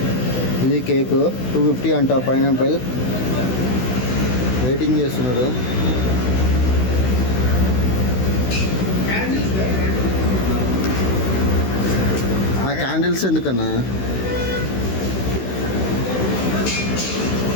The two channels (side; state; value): right; late; 16 ms